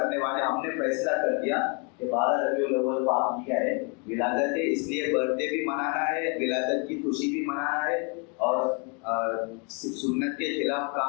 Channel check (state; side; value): quieter; right; 35.4 dB